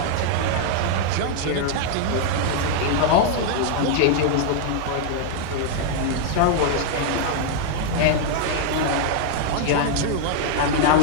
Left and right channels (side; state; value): both; different; correlation 0.00